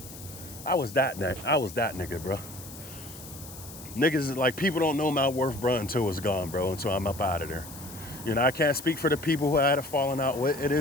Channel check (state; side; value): noise; left; hiss, 15 dB below the sound